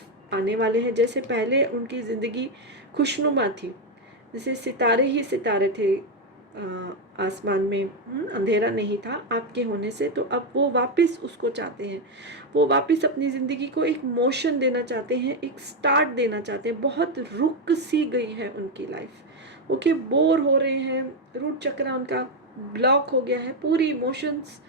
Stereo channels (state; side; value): normal; both; correlation 0.05